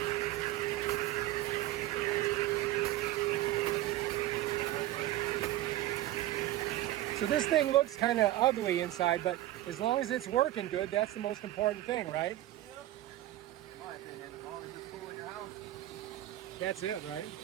So this thing looks kind of ugly inside, but as long as it's working good, that's the most important thing, right? Yeah. In my opinion, as long as it's cool in your house. That's it, right?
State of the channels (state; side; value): quieter; left; 14.9 dB